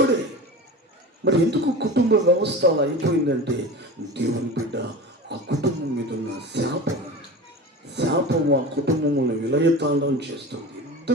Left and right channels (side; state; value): both; normal; correlation 0.31